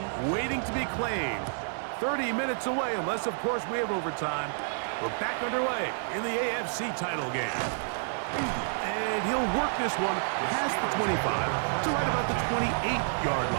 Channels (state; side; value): silent; left; 58 dB below the other